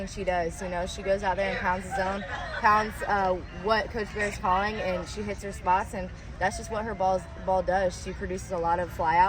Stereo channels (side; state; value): both; identical; correlation 1.00